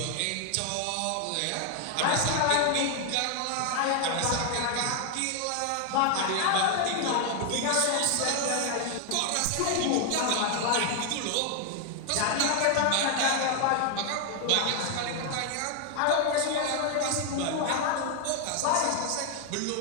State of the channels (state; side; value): different; both; correlation 0.01